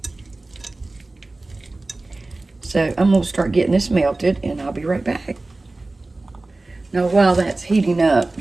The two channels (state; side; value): quieter; left; 3.1 dB